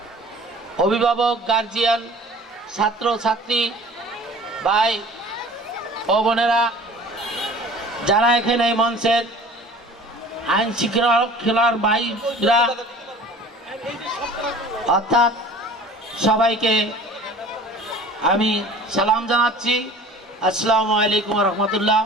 অভিভাবক, গার্জিয়ান, ছাত্র ছাত্রী ভাই ও বোনেরা, যারা এখানে এই মঞ্চের আইন শৃঙ্খলার ভাইরা, অর্থাৎ সবাইকে আমি সালাম জানাচ্ছি। আসসালামু আলাইকুম রহমতুল্লাহ।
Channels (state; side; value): normal; both; correlation 0.45